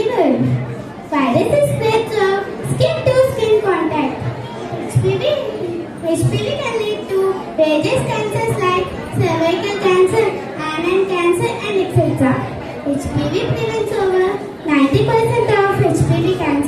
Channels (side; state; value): both; identical; correlation 1.00